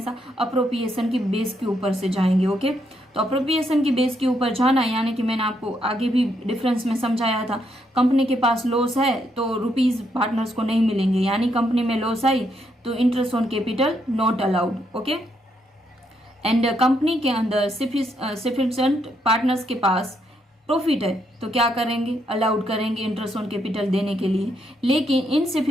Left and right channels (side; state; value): both; normal; correlation 0.76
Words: अप्रोप्रिएशन की बेस के ऊपर से जाएंगे। ओके, तो अप्रोप्रिएशन की बेस के ऊपर जाना, यानी कि मैंने आपको आगे भी डिफरेंस में समझाया था, कंपनी के पास लॉस है तो रुपीज पार्टनर्स को नहीं मिलेंगे, यानी कंपनी में लॉस आई तो interest on capital not allowed. Okay, and company के अंदर सफिशिएंट पार्टनर्स के पास प्रॉफिट है तो क्या करेंगे, अलाउड करेंगे इंटरेस्ट ऑन कैपिटल देने के लिए। लेकिन